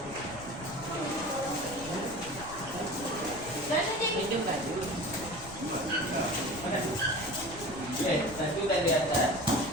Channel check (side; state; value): left; noise; rumble, 15 dB below the sound